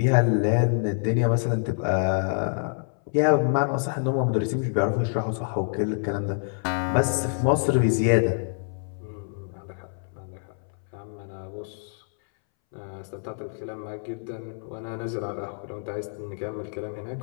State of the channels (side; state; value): right; silent; 61 dB below the other